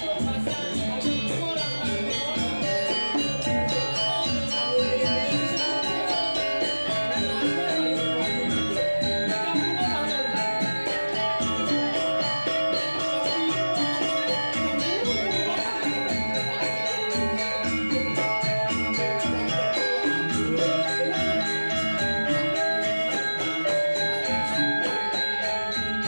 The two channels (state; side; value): inverted; both; correlation -1.00